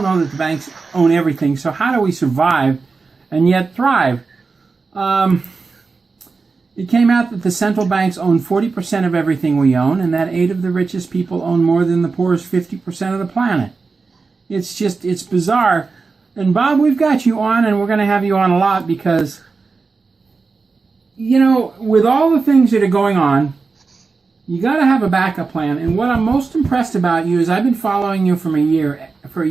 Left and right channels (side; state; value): left; quieter; 4.4 dB